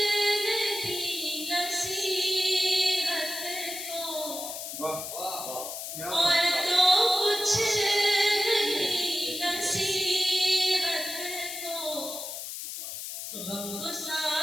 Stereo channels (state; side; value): noise; left; hiss, 7 dB below the sound